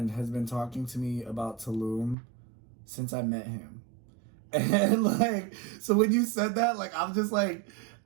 has been talking to me about Tulum since I met him. And like, so when you said that, like, I'm just like,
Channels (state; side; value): drops out; left; at 2.1 s